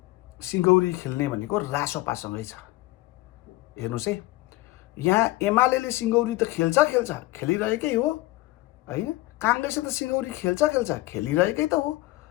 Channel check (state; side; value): quieter; right; 19.2 dB